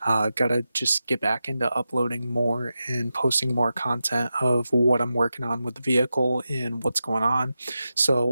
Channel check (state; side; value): inverted; both; correlation -0.91